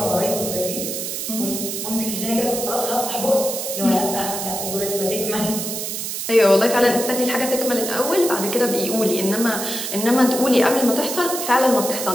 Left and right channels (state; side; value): noise; right; hiss, 4 dB below the sound